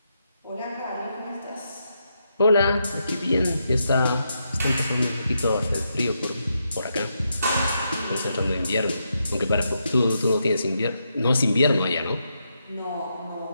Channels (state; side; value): inverted; both; correlation -0.82